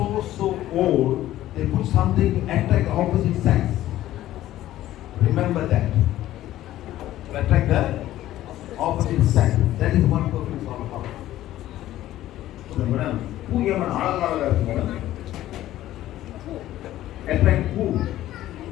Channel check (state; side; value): quieter; right; 14.0 dB